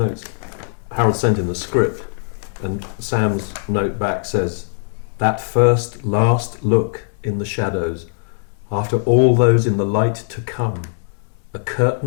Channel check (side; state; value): right; silent; digital silence